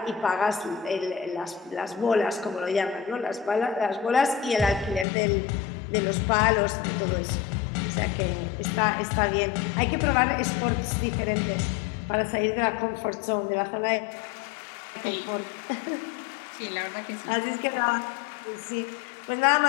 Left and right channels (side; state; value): right; drops out; at 5.1 s